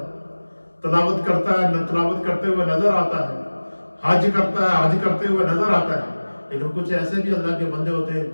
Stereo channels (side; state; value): both; inverted; correlation -1.00